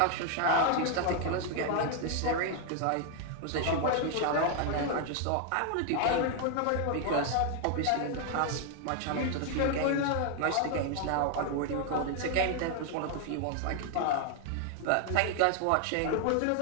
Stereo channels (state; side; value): different; both; correlation 0.00